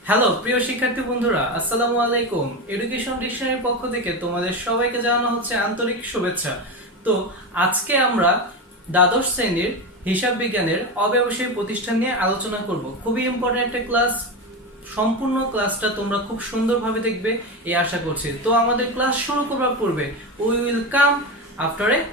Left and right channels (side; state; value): both; normal; correlation 0.18